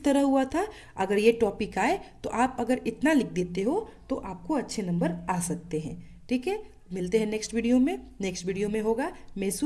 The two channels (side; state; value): both; identical; correlation 1.00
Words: तरह हुआ था। अगर ये टॉपिक आए तो आप अगर इतना लिख देते हो तो आपको अच्छे नंबर आ सकते हैं। ठीक है, मिलते हैं नेक्स्ट वीडियो में। नेक्स्ट वीडियो में होगा